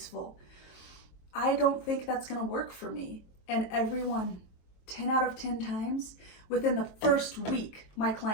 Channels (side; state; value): right; late; 22 ms